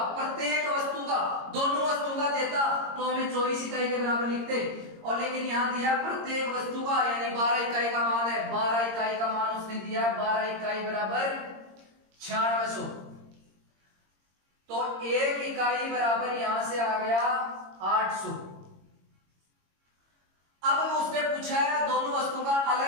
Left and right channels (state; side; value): late; left; 22 ms